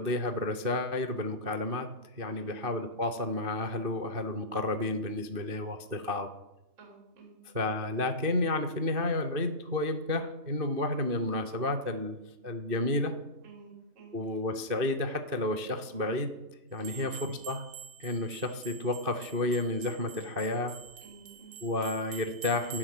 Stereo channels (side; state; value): left; late; 2.6 ms